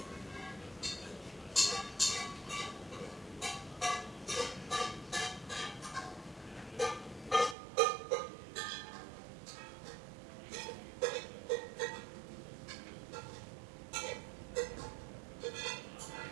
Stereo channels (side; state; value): left; drops out; at 7.6 s